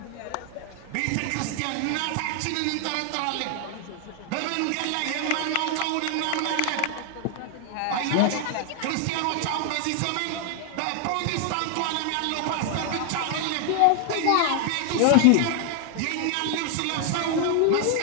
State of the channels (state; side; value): different; both; correlation 0.00